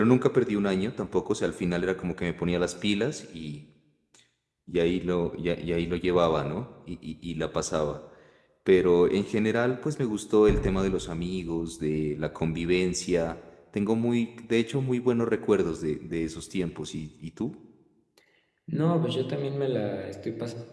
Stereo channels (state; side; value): identical; both; correlation 1.00